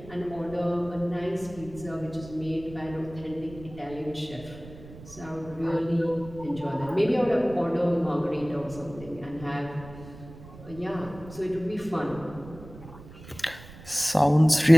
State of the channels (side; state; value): right; noise; rumble, 17 dB below the sound